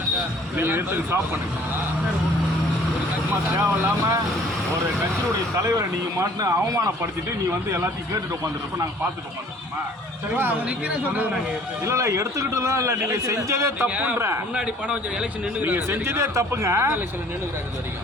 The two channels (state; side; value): normal; both; correlation 0.54